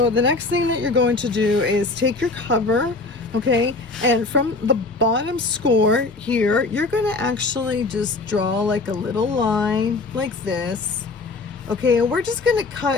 the next thing that you're going to do is take your cover, okay, and from the bottom score here, you're going to actually just draw like a little line like this, Okay, and we're just gonna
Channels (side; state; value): right; quieter; 3.5 dB